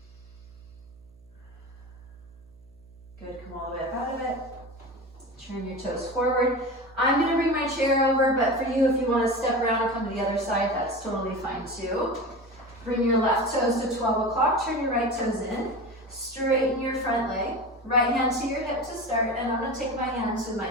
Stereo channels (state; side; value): noise; right; hum, 30 dB below the sound